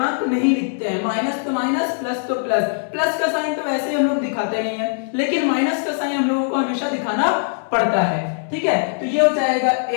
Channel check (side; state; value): right; silent; 64 dB below the other